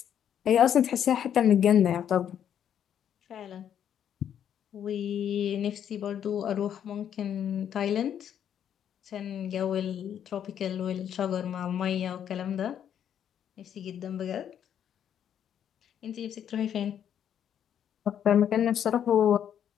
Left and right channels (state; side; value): quieter; right; 9.3 dB